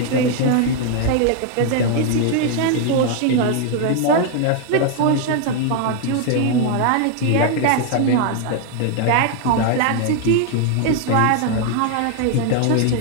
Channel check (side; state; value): both; different; correlation 0.00